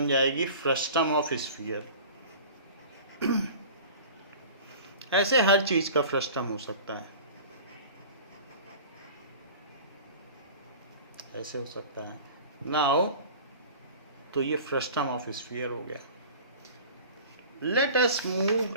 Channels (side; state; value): both; inverted; correlation -0.40